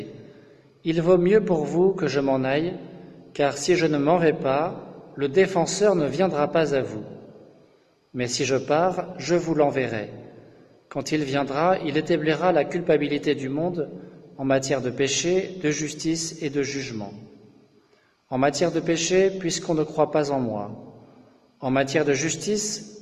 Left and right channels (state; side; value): identical; both; correlation 1.00